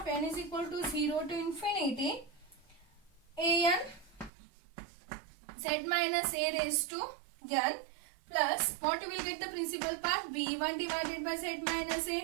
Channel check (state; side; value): drops out; left; at 4.3 s